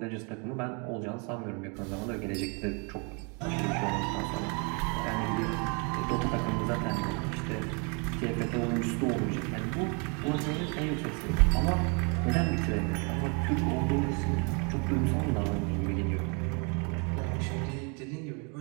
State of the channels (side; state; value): left; quieter; 34.4 dB